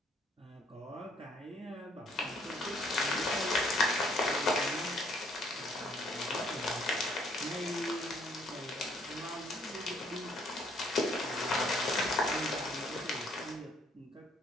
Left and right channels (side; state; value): both; normal; correlation 0.64